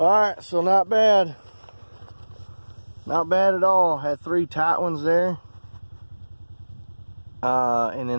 right, so not bad, not bad at all. Had 3 tight ones there, and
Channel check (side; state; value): both; inverted; correlation -1.00